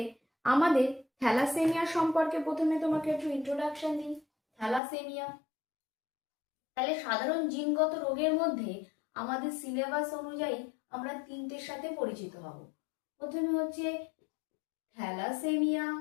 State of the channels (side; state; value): right; drops out; at 4.8 s